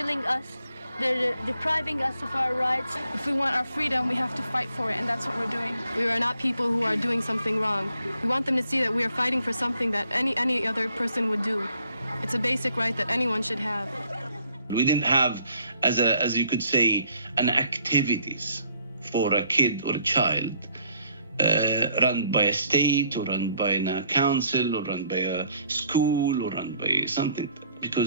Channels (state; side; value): inverted; both; correlation -0.65